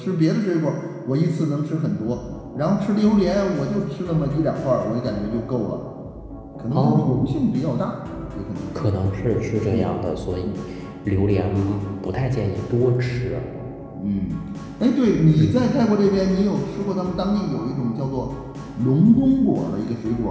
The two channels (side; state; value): both; identical; correlation 1.00